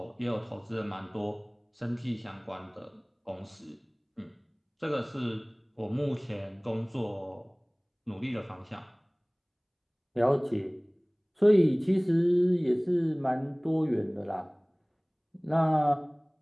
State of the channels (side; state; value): both; identical; correlation 1.00